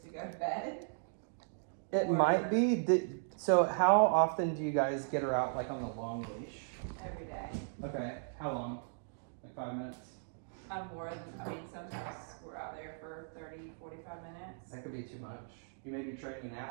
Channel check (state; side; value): silent; left; digital silence